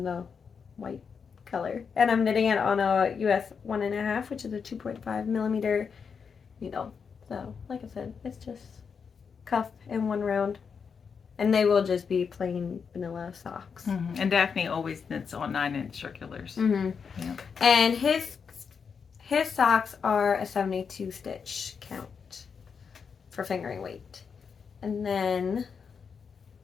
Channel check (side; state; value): right; quieter; 6.1 dB